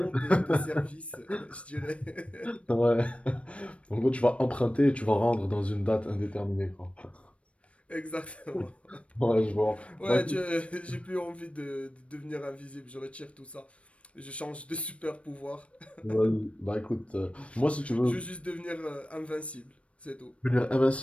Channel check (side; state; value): right; late; 0.062 ms